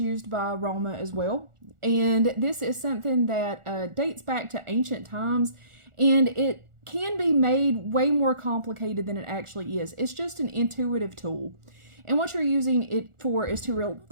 by Roma as well. And this is something that dates back to ancient times, and it can be made way more complicated than it actually is. It's just an intuitive tool. And what you're using it for is to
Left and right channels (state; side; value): late; left; 1.4 ms